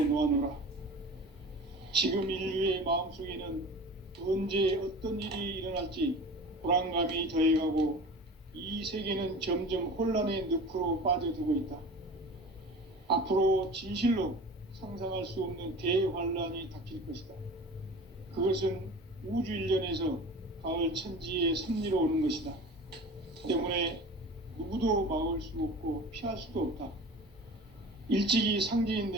지금 인류의 마음속에는 언제 어떤 일이 일어날지 불안감이 더해가고 이 세계는 점점 혼란의 늪으로 빠져들고 있다. 앞으로 진실로 상상할 수 없는 대환란이 닥칠 것이다. 그것은 우주 일련에서 가을 천지의 섭리로 오는 것이다. 때문에 누구도 막을 수 없고 피할 수도 없다. 일찍이 상제인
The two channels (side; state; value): both; normal; correlation 0.37